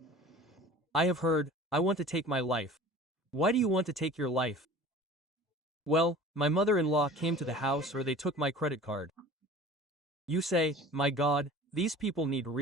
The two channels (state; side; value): normal; both; correlation 0.43